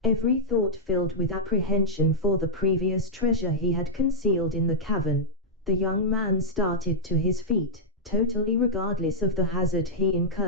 Every thought filled with apprehension for the previous treasure he had concealed in the cavern, the young man started to his feet, totally regardless of the hazard he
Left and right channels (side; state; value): both; normal; correlation -0.07